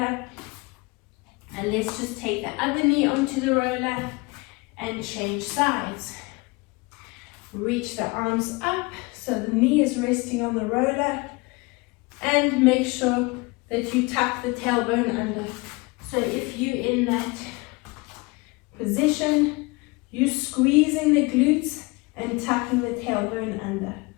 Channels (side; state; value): right; quieter; 25.4 dB